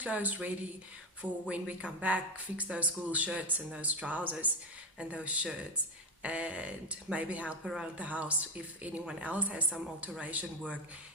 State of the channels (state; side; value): normal; both; correlation 0.15